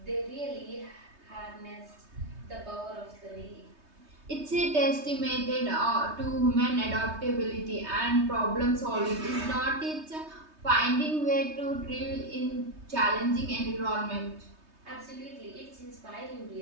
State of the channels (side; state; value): left; late; 3.2 ms